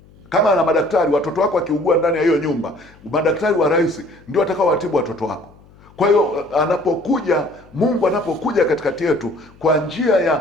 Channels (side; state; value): left; noise; hum, 26 dB below the sound